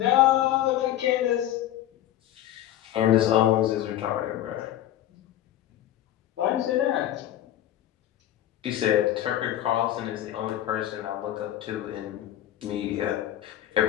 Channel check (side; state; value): right; quieter; 12.8 dB